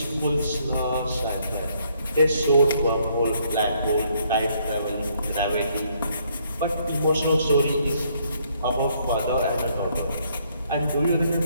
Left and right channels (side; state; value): both; inverted; correlation -0.69